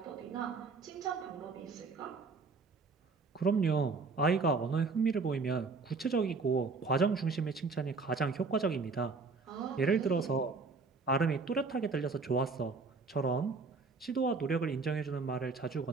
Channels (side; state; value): left; quieter; 4.3 dB